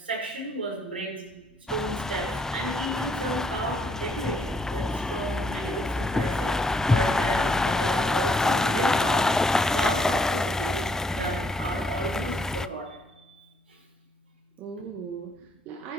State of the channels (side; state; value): both; normal; correlation 0.71